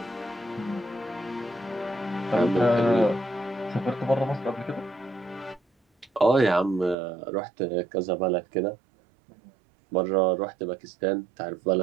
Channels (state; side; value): drops out; left; at 7.0 s